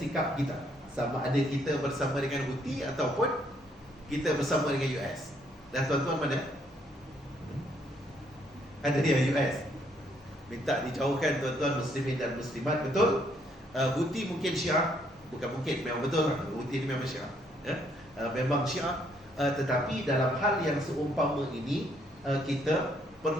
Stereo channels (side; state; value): both; normal; correlation 0.69